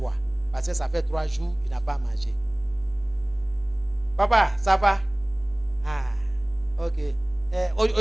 Parce que ça fait 3 jours, il n'a pas mangé. Papa, ça va? Ah, ok.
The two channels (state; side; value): noise; left; hum, 21 dB below the sound